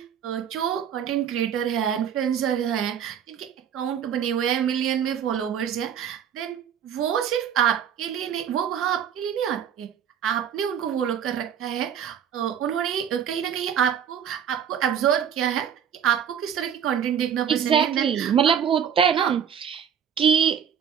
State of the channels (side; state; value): left; quieter; 8.5 dB